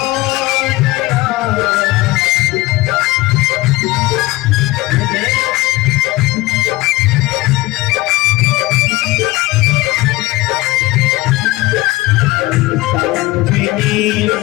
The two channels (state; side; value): quieter; right; 19.8 dB